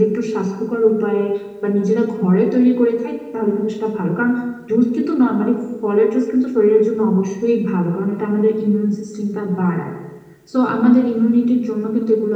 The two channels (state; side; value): identical; both; correlation 1.00